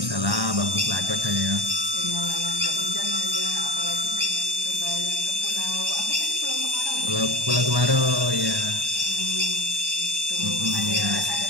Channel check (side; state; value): left; late; 1.1 ms